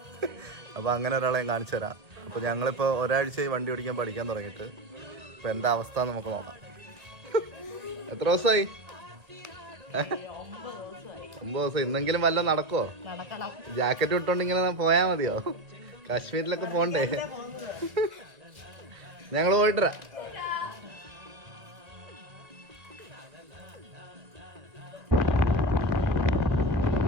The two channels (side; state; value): left; late; 2.1 ms